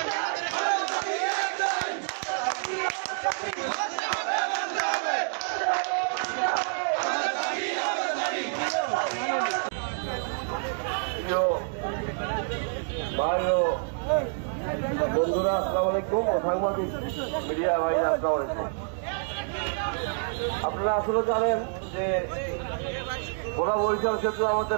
আমাদের দাবি একটাই, ভাই ও বন্ধুরা, আসসালামু আলাইকুম। সাংবাদিক মিডিয়া ভাই, আসসালামু আলাইকুম। আপনারা আসলে জানেন যে ওরা বরিশাল সেতু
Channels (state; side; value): silent; left; digital silence